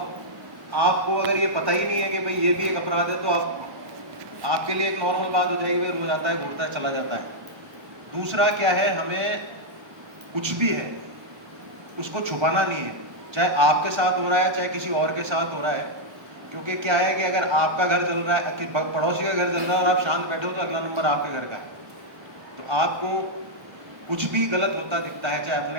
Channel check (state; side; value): late; left; 1.1 ms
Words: आपको अगर ये पता ही नहीं है कि भाई ये भी एक अपराध है, तो आपके लिए एक नॉर्मल बात हो जाएगी, भाई रोज आता है, घूरता है, चला जाता है। दूसरा क्या है, हमें कुछ भी है उसको छुपाना नहीं है, चाहे आपके साथ हो रहा है, चाहे किसी और के साथ हो रहा है। क्योंकि क्या है कि अगर आपका घर जल रहा है, पड़ोसी का घर जल रहा है और आप शांत बैठे हो, तो अगला नंबर आपके घर का है। तो आपको कुछ भी गलत होता दिखता है, चाहे